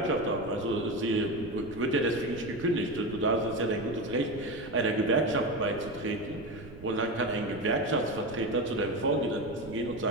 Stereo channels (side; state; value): right; noise; rumble, 16 dB below the sound